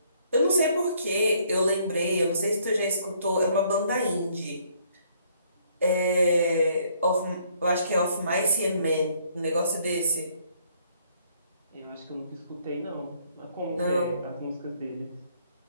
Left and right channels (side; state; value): both; inverted; correlation -0.65